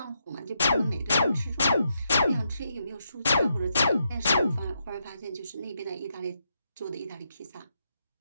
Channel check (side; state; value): both; inverted; correlation -0.81